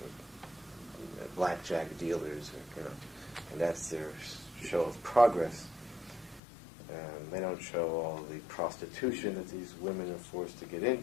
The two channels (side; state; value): right; drops out; at 6.4 s